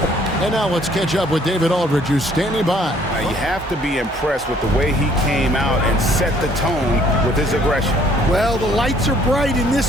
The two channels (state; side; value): normal; both; correlation 0.61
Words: And now let's catch up with David Aldridge, who's standing by. Now, you have to be impressed with the way he came out and set the tone with his aggression. Well, the lights are bright in